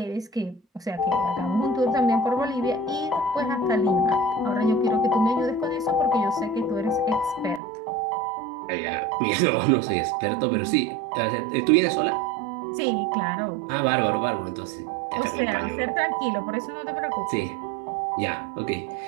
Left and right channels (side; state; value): left; drops out; at 7.6 s